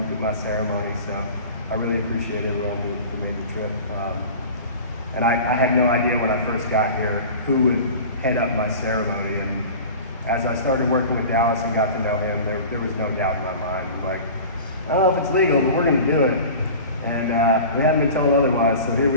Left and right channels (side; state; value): both; inverted; correlation -0.38